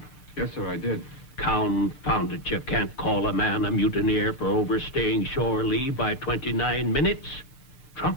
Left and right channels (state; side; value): noise; right; hiss, 29 dB below the sound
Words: Yes, sir, I did. Confound it, you can't call a man a mutineer for overstaying shore leave by 29 minutes.